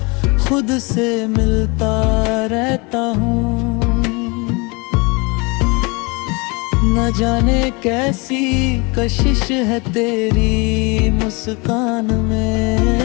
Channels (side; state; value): right; quieter; 28.4 dB